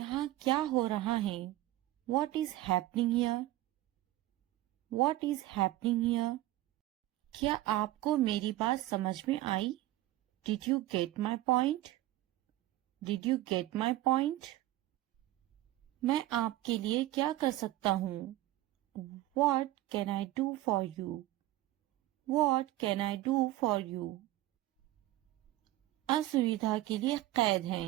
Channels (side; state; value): left; quieter; 16.4 dB